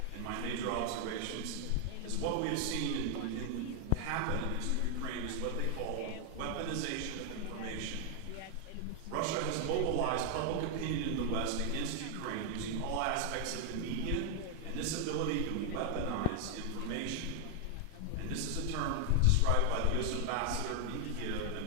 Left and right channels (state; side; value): different; both; correlation 0.00